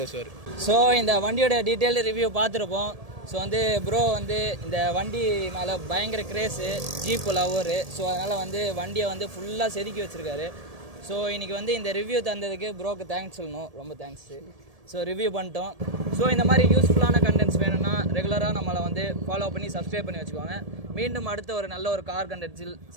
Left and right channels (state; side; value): late; left; 1.7 ms